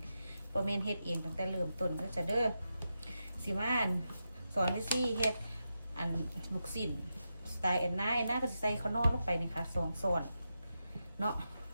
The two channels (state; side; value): inverted; both; correlation -0.88